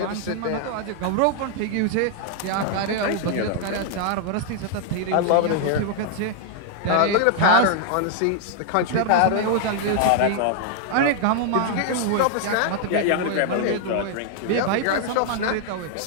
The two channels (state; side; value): different; both; correlation -0.01